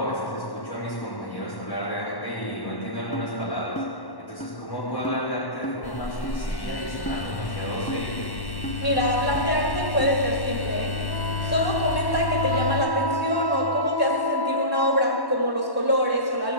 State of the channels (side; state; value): right; late; 1.1 ms